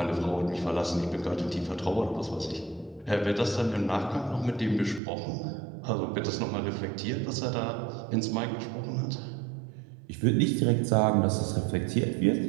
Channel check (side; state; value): left; drops out; at 5.0 s